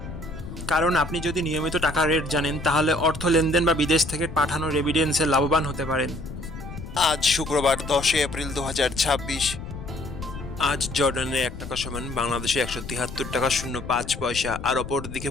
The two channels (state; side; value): noise; left; rumble, 10 dB below the sound